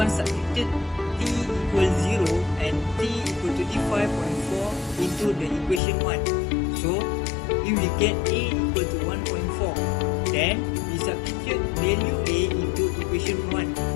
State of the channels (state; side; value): drops out; right; at 5.8 s